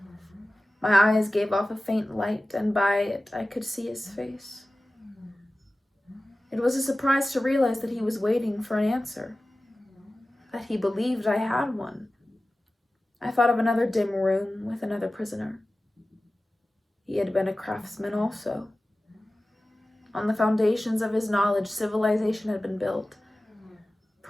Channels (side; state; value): both; normal; correlation 0.96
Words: My eyes gave off a faint light, and by it I could see his face. It was a surprise to realize that he was waiting for an answer, that he believed I had one. I thought of another dim room with another prisoner. He had been a craftsman also. On the foundations of his knowledge, civilization had been built.